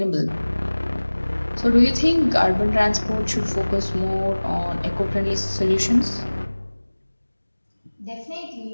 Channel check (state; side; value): inverted; both; correlation -1.00